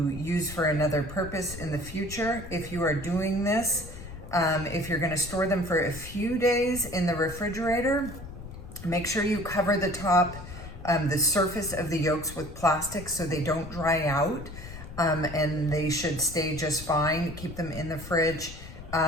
use for another purpose in the future. If you are doing this, if you're going to store them for a few days in the refrigerator, make sure you cover the top, the surface of the yolks with plastic so they don't dry out, and they should stay just fine. Keep them in the fridge.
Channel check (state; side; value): noise; left; rumble, 12 dB below the sound